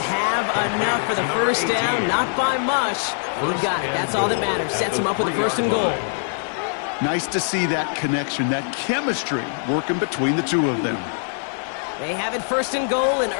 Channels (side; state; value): right; silent; 56 dB below the other